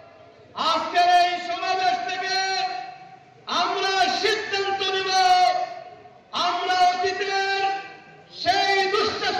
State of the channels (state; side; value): identical; both; correlation 1.00